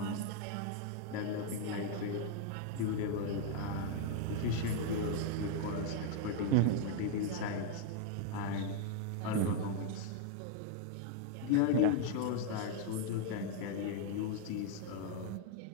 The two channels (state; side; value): different; both; correlation 0.00